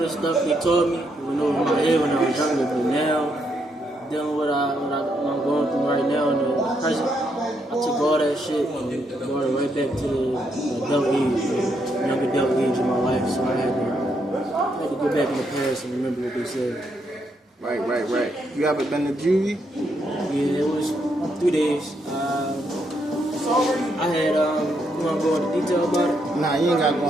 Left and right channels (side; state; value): both; normal; correlation 0.77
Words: the stuff they taught me went over my head when I was younger, but now, dealing with what I'm going through right now in the present, I took all that shit and brought it right back to the adult age, the young adult age of my life. So I had to go back in the past and remember what they said. Right. You ever been to juvie? Yeah, it was 3 days. I had, you want to go into detail about it? Nah, you ain't got to go